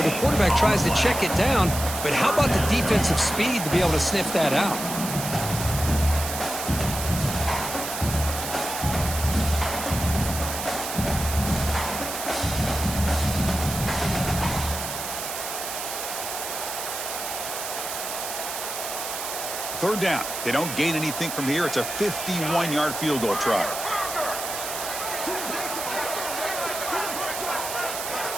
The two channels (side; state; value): right; noise; hiss, 6 dB below the sound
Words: The quarterback tries to check it down, but how about the defensive speed to be able to sniff that out? Third down. They don't gain anything from here. It's a 51-yard field goal try.